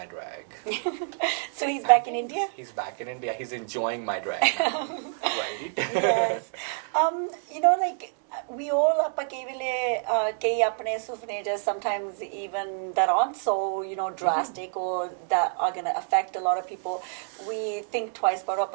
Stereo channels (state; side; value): silent; left; digital silence